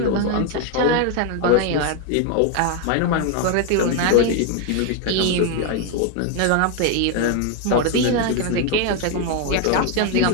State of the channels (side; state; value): both; different; correlation 0.01